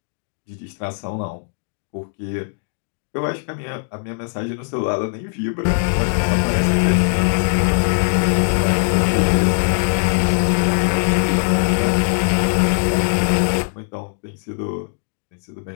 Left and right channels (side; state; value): right; silent; digital silence